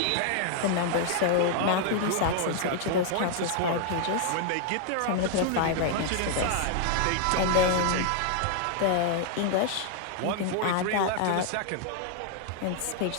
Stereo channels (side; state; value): both; different; correlation 0.00